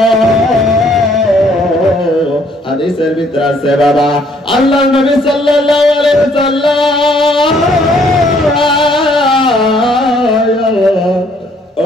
হাদিসের ভিতরে আছে বাবা, আল্লাহর নবী সাল্লাল্লাহু আলাইহি ওয়াসাল্লাম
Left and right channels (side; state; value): both; normal; correlation 0.64